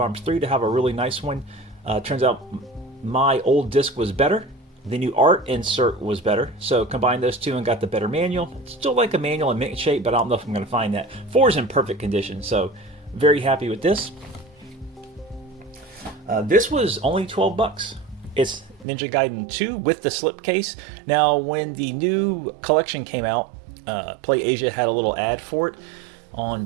3 to have a really nice one. Turns out my old disc was better, the new art insert was better, so combined those two and got the better manual. It's still like a manual in mint shape, but I don't know if I'm going to find that. 4 is in perfect condition, so very happy with this. This was only $12. It's Ninja Gaiden 2 with the slipcase. Now, when the new collection came out, Play Asia had a little ad for it on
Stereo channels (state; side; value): drops out; left; at 18.9 s